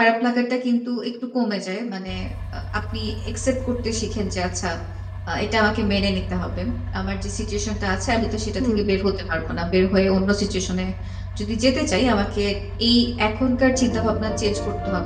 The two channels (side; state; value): both; identical; correlation 1.00